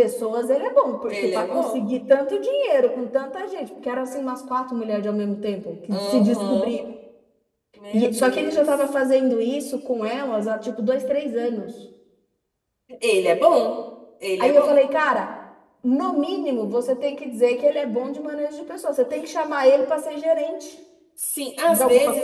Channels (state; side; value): identical; both; correlation 1.00